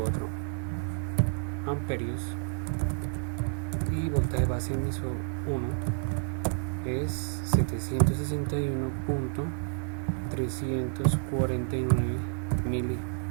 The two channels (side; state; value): left; silent; 58 dB below the other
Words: amperios y voltaje base emisor 1 es 761.349